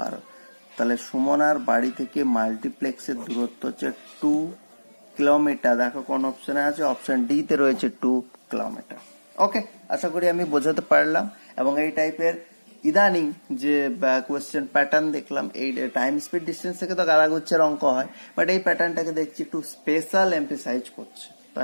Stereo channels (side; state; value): both; inverted; correlation -1.00